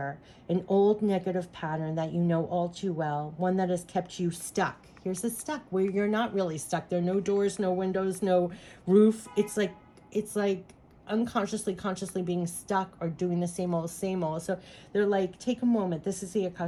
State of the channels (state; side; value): identical; both; correlation 1.00